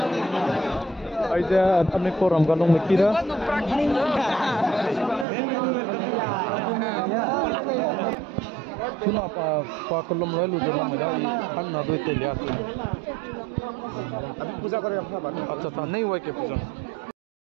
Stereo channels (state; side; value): drops out; left; at 5.2 s